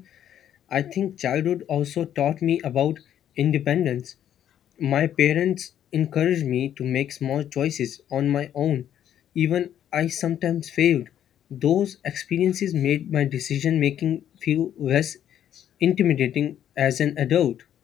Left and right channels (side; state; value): right; quieter; 10.4 dB